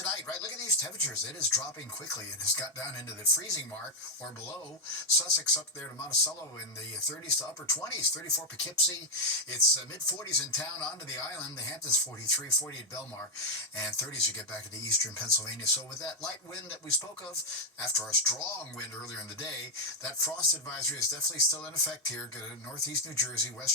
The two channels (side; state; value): both; normal; correlation 0.01